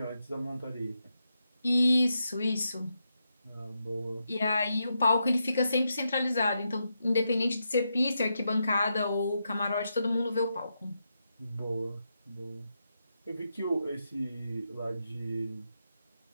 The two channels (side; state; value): both; inverted; correlation -0.84